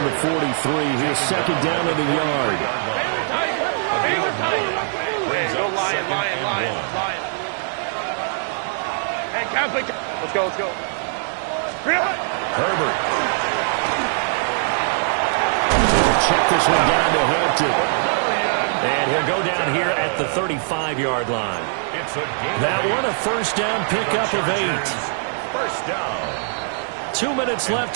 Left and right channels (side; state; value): left; silent; digital silence